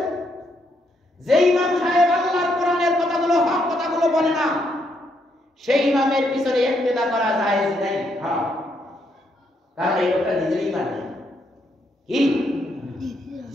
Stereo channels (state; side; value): normal; both; correlation 0.75